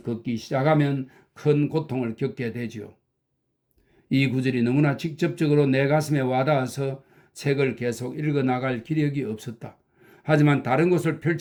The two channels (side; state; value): both; identical; correlation 1.00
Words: 걷기 시작하면 큰 고통을 겪게 되지요. 이 구절이 너무나 직접적으로 내 가슴에 와닿아서 책을 계속 읽어나갈 기력이 없었다. 하지만 다른 곳을